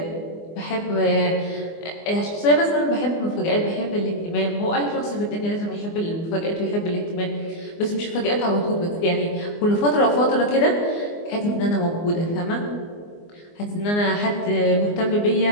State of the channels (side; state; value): right; late; 24 ms